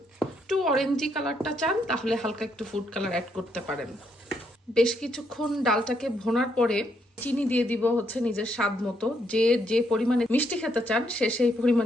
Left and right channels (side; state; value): both; normal; correlation 0.75